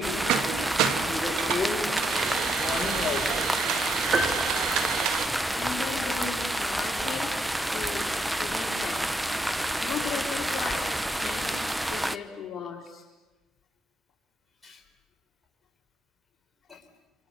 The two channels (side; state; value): both; normal; correlation 0.78